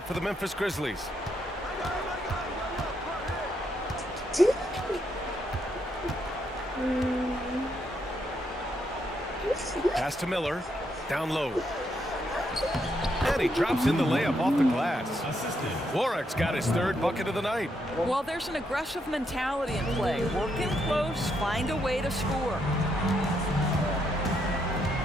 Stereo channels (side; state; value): both; normal; correlation 0.78